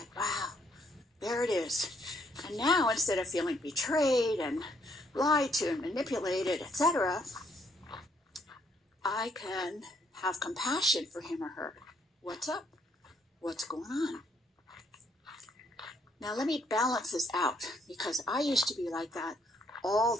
wow, there it is. And now instead of feeling betrayed and lied to and manipulated, etc., I can have compassion for him or her. What's up? What's going on? Now let me balance this out, because I used to be like that all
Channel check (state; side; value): normal; both; correlation 0.69